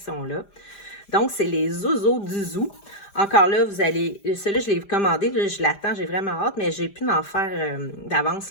Donc, c'est les Zozo du Zoo. Encore là, vous allez... Celui-là, je l'ai commandé, là, je l'attends, j'ai vraiment hâte, mais j'ai pu m'en faire d'avance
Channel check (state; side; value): late; right; 5.0 ms